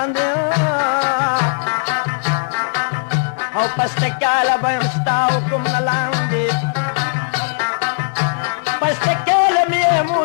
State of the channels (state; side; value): silent; right; 66 dB below the other